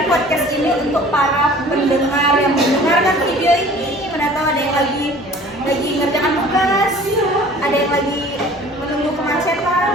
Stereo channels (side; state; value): both; normal; correlation 0.47